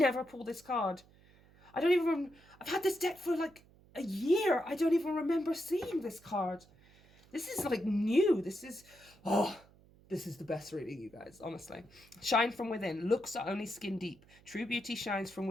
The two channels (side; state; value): right; noise; hum, 27 dB below the sound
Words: pull this card. I don't even... I've had this deck for, like, a year. I don't even remember seeing this card. This is, like, new. This is... Oh, this is the best reading, you guys, honestly. Shine from within. Looks are only skin deep. True beauty shines from